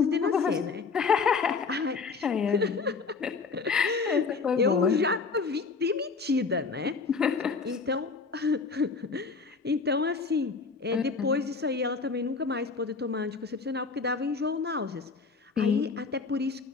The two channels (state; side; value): quieter; right; 4.7 dB